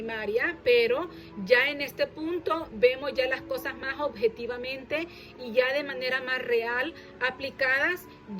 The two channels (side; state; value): both; identical; correlation 1.00